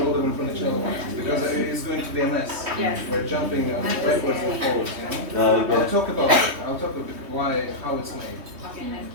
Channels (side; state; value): left; late; 3.1 ms